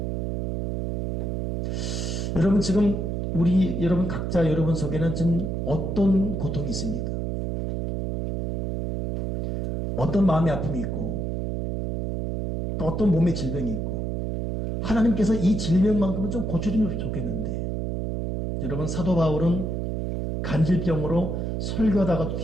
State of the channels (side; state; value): right; noise; hum, 1 dB below the sound